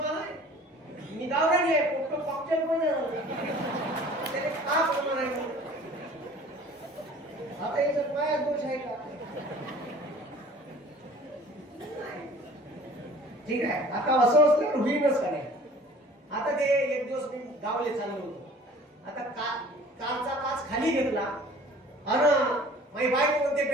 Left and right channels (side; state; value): both; normal; correlation 0.48